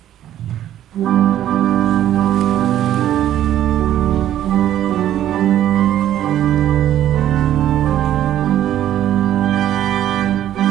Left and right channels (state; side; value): quieter; left; 11.8 dB